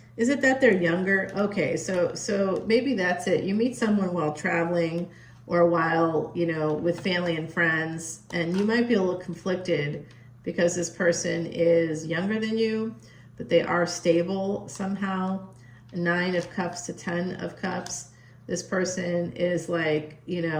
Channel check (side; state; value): both; identical; correlation 1.00